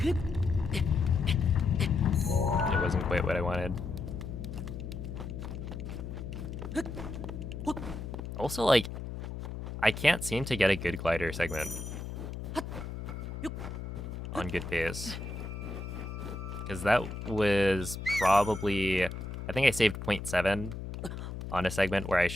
it wasn't quite what I wanted. Also, like, I can't seem to get a good glider segment on good pace. Because that was probably, I think I saved 0.7 on a segment where I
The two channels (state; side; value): noise; left; hum, 7 dB below the sound